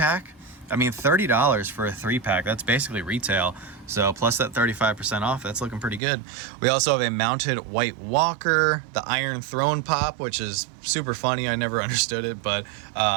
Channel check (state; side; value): drops out; left; at 6.0 s